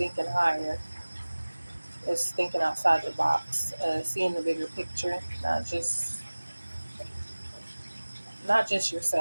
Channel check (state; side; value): inverted; both; correlation -1.00